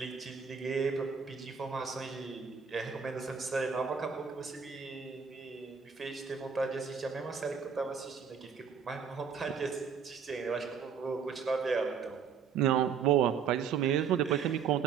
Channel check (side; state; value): left; quieter; 6.7 dB